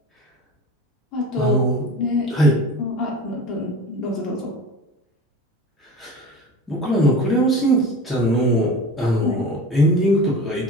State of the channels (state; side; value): normal; both; correlation 0.34